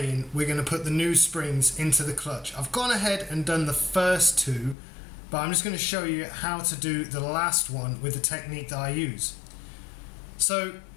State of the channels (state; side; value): drops out; right; at 4.8 s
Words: in, we're going to put the new springs into the clutch. I've gone ahead and done the first two, but I'm just going to show you how to do the last one with the technique that I use. So